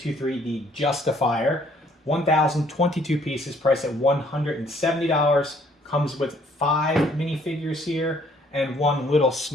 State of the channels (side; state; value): both; normal; correlation 0.63